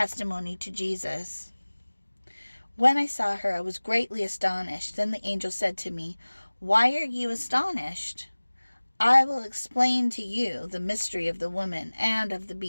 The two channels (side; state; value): both; inverted; correlation -1.00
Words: to Jesus. When I saw her, I was greatly astonished. Then the angel said to me, "Why are you astonished? I will explain to you the mystery of the woman and of the